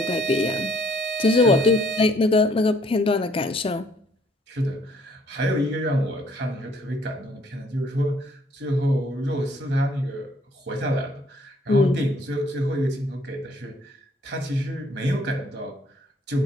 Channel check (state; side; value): normal; both; correlation 0.63